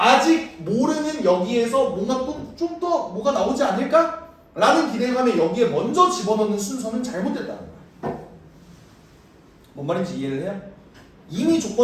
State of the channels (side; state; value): both; identical; correlation 1.00